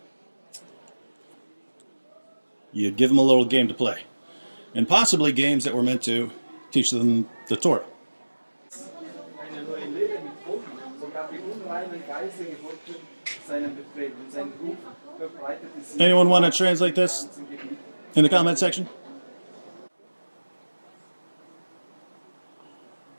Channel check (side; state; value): both; inverted; correlation -1.00